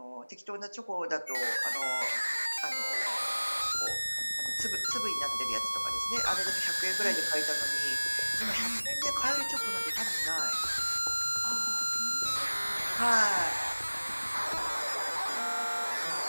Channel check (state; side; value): inverted; both; correlation -1.00